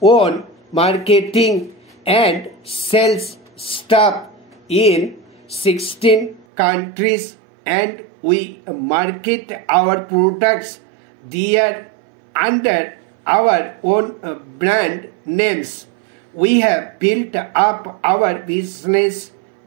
own marketing and sales staff in 16 countries, and we market our products there under our own brand names. We have built up our business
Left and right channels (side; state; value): left; drops out; at 6.5 s